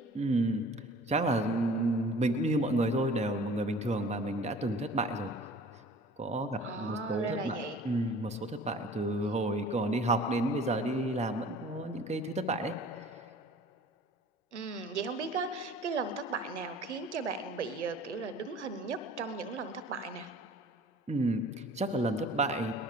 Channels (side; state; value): both; normal; correlation 0.47